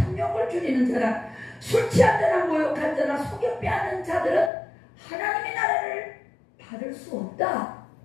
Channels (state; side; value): drops out; right; at 4.5 s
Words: 줄이는 자나 술 취한 자나 모욕한 자나 속여 빼앗는 자들은 하나님의 나라를 받을 수 없다.